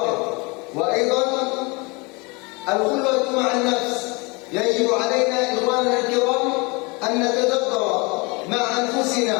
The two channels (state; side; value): quieter; right; 27.9 dB